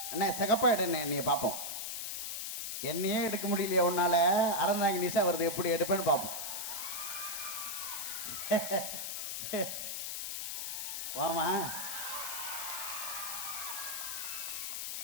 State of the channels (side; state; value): left; noise; hiss, 4 dB below the sound